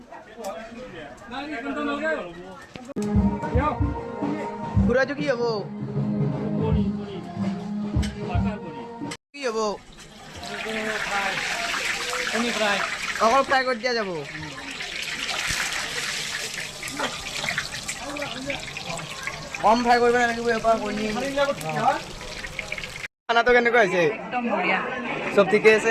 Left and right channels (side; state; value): both; identical; correlation 1.00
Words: খুৰাটো কি হ'ব কি হ'ব অকল ফ্ৰাই কৰি দিয়া যাব। কম ফ্ৰাই কৰিব নালাগিব, এবাৰ কণী। খানাটো কেনেকুৱা হৈছে? একদম বঢ়িয়া, চব ঠিকে